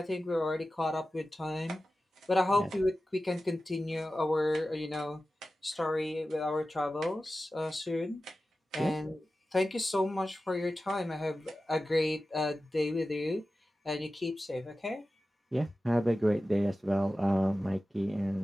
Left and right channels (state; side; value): normal; both; correlation 0.94